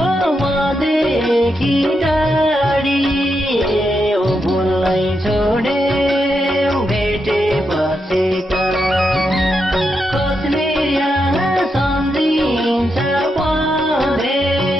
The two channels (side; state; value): both; normal; correlation 0.84